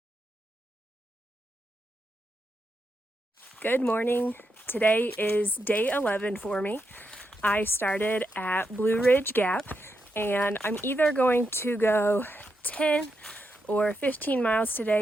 Good morning. Today is day 11 for me. I started at Blue Ridge Gap and I'm either going to go 10 or 15 miles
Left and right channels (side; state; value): both; normal; correlation 0.84